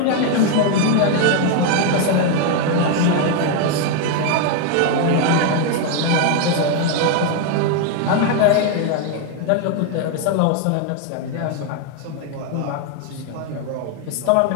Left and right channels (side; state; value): both; different; correlation 0.01